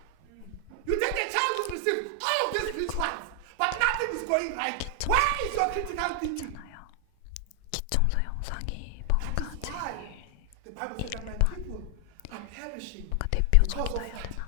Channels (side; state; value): both; different; correlation 0.00